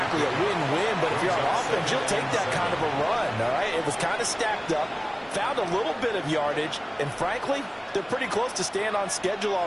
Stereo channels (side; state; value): both; identical; correlation 1.00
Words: a win-win, but if you're on offense, you'll take that kind of a run, all right? It was kind of stacked up, found a little bit of yardage, and frankly, they're pretty close to staying on schedule